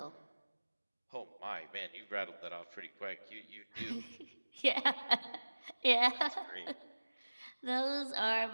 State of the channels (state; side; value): inverted; both; correlation -1.00